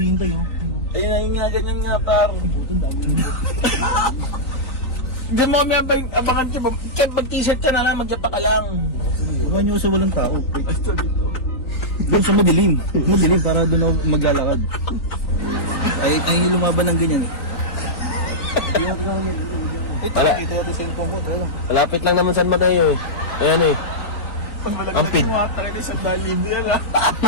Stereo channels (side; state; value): right; late; 3.9 ms